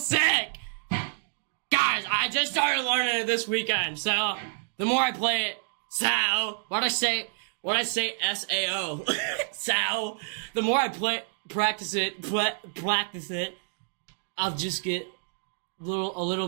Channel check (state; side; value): silent; left; 59 dB below the other